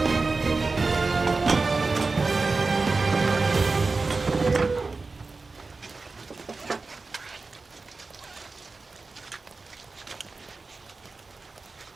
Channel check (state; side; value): quieter; left; 3.9 dB